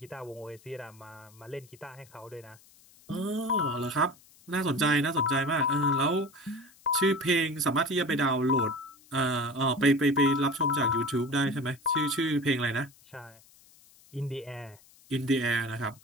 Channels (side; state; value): left; noise; hiss, 27 dB below the sound